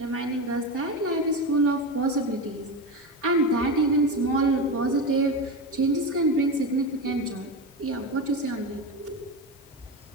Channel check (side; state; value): both; normal; correlation 0.19